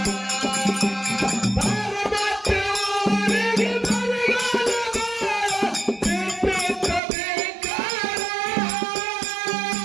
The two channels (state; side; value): drops out; left; at 7.0 s